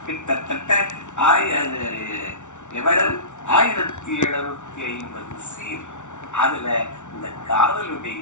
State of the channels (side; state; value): right; late; 0.85 ms